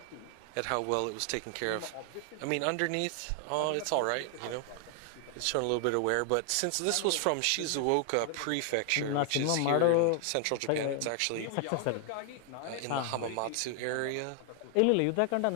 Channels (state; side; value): different; both; correlation 0.00